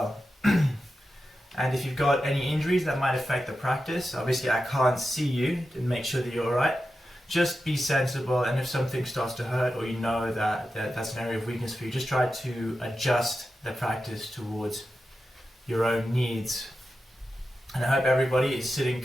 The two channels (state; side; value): normal; both; correlation 0.91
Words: And if you've got any injuries that might affect the practice, obviously I can't see you to make sure that you're alright. Just be sensible, and if something starts to hurt or you know that's an area of weakness for you, just try to adjust the practice towards your own needs. And I hope everybody is sitting